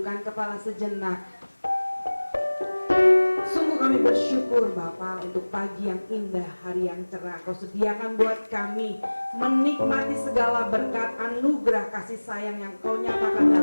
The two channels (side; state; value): both; inverted; correlation -1.00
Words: kepala sejenak. Sungguh kami bersyukur Bapa untuk pagi yang indah, hari yang cerah. Kau sediakan buat kami menikmati segala berkat anugerah kasih sayang yang Kau nyatakan